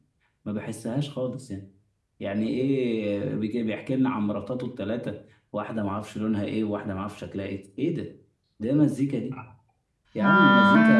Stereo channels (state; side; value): identical; both; correlation 1.00